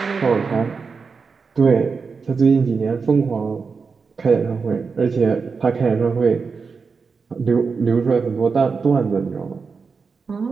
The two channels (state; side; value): quieter; left; 5.1 dB